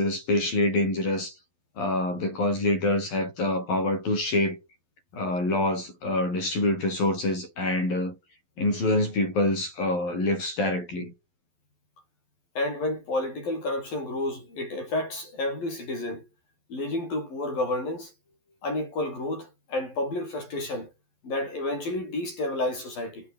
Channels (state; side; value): late; right; 11 ms